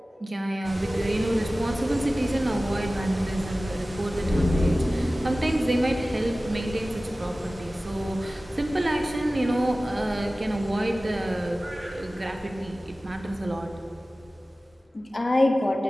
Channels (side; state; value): both; normal; correlation 0.97